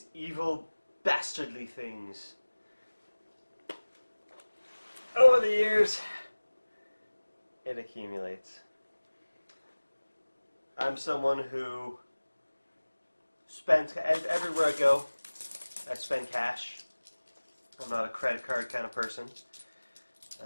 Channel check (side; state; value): both; inverted; correlation -1.00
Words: evil, bastardly things. Over the years, it accumulates. I'm someone who spends, everywhere I go, I spend cash. I'm not a credit card kind of person.